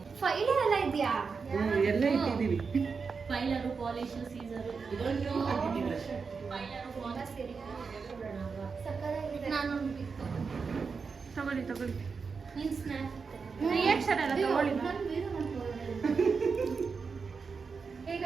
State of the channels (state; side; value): quieter; left; 5.2 dB